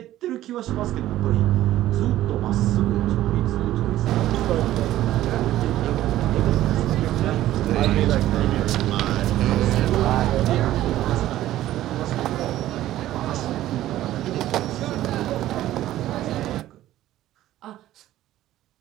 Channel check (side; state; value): left; quieter; 14.1 dB